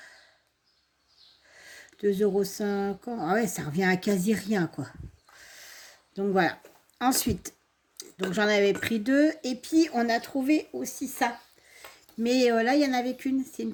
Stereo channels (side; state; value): both; identical; correlation 1.00